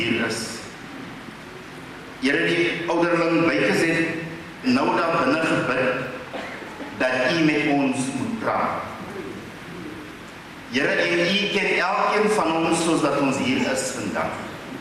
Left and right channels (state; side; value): identical; both; correlation 1.00